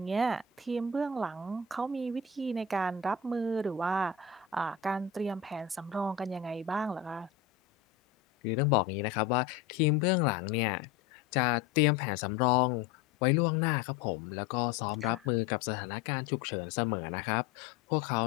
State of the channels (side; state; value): right; quieter; 6.7 dB